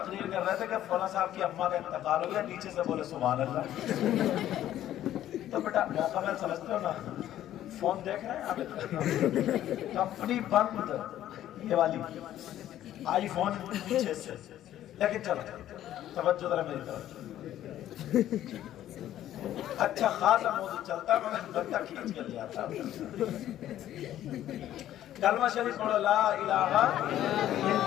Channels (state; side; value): quieter; right; 12.4 dB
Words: کر رہے تھے کہ فلاں صاحب کی اماں کا انتقال ہو گیا، نیچے سے بولے سبحان اللہ. تو بیٹا موقع محل سمجھتے ہو نا. فون دیکھ رہے ہیں آپ؟ کمپنی بند یہ والی آئی فون پیچھے سے. لیکن چلو توجہ ذرا میری طرف. اچھا خاصا موضوع چلتا مگر بندہ کھینچ کے لے آتا. کلمہ شریف پڑھو لا الہ